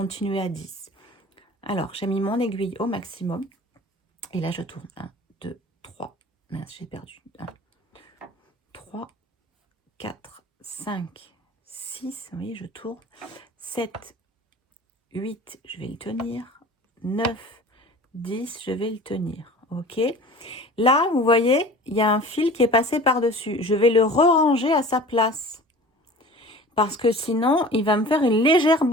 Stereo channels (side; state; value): both; normal; correlation 0.41